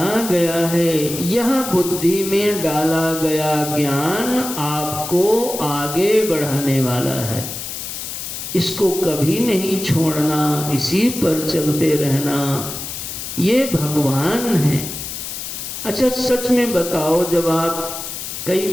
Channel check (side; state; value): left; noise; hiss, 7 dB below the sound